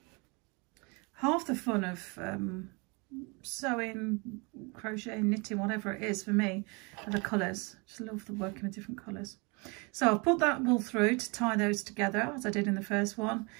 Half the fun of sewing, crocheting, knitting, whatever it is for me, are the colours. Just love the working with different colours. So I've put that wool through to tie those together as I did in the first one,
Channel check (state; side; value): quieter; left; 29.9 dB